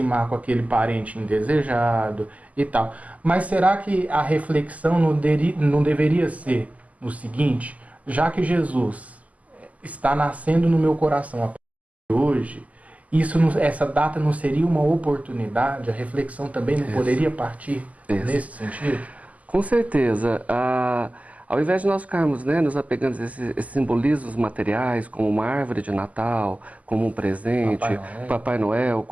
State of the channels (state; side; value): late; left; 0.073 ms